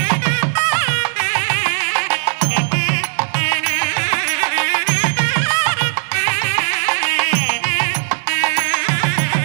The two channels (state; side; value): silent; left; 56 dB below the other